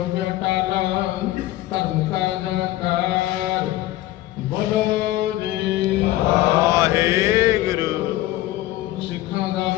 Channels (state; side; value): quieter; right; 15.7 dB